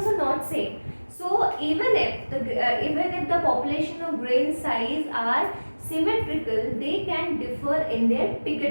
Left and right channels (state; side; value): inverted; both; correlation -1.00